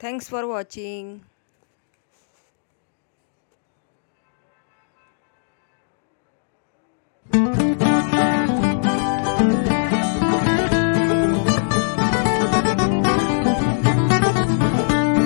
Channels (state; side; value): silent; right; digital silence